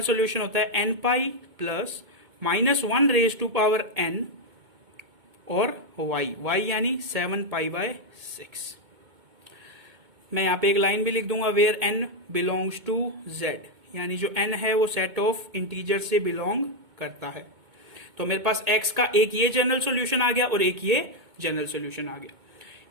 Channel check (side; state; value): left; late; 2.2 ms